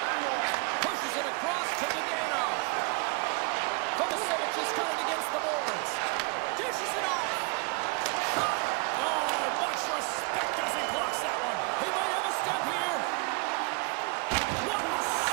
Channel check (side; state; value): left; quieter; 29.8 dB